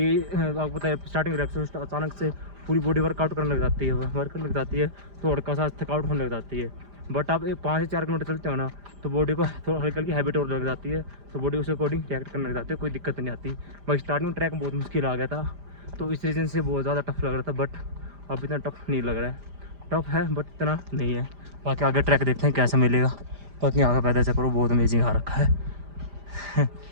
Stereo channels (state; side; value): late; left; 5.0 ms